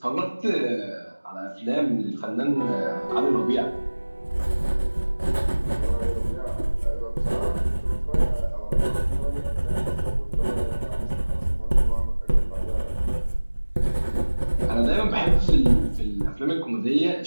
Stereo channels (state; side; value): inverted; both; correlation -1.00